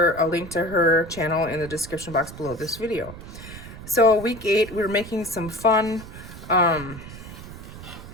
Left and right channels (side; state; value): right; noise; rumble, 14 dB below the sound